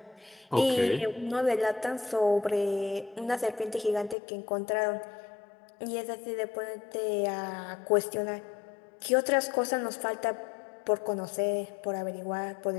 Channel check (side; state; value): right; drops out; at 4.2 s